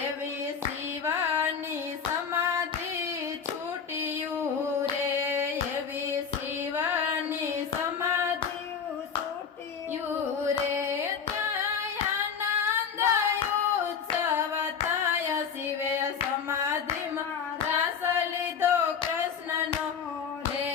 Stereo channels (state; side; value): quieter; right; 6.7 dB